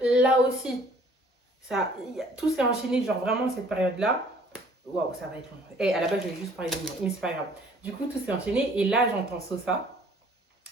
là aussi, tout s'est enchaîné, genre vraiment cette période-là. Waouh, ça va être long. Et à la base, je voulais juste parler de moi, mais c'est pas grave. Du coup, tout s'est enchaîné, et là, j'entends Sosa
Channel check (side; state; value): both; normal; correlation 0.56